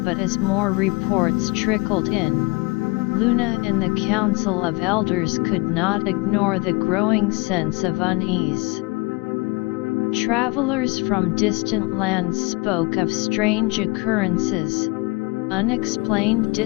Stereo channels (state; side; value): quieter; right; 26.6 dB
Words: but as more reports trickled in, Luna and the Council of Elders could not ignore the growing sense of unease. Travelers from distant lands spoke of strange occurrences, unexplained